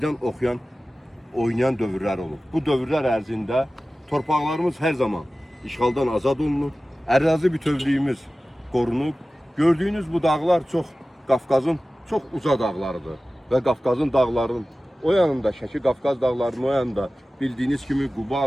oynayan dövrlər olub. Bu dövrlər ərzində torpaqlarımız hər zaman işğaldan azad olunur, ərazi bütövlüyümüz qorunub. Gördüyünüz bu dağlar Qafqazın çox uca dağlarıdır və Qafqazın dağlarının o yanında, Şəki Qafqaz dağlarının o yanında bildiyiniz kimi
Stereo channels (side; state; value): both; normal; correlation 0.96